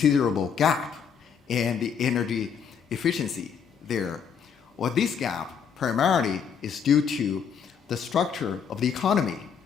gap in the energy efficiency there. Well, this gap primarily is due to the structure of the economy,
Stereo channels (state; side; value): quieter; right; 7.1 dB